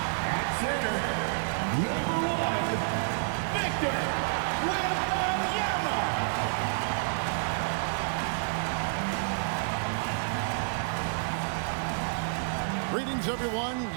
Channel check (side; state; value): left; silent; 58 dB below the other